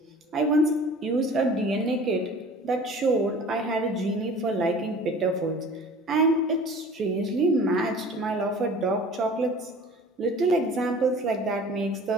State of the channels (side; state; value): both; normal; correlation 0.45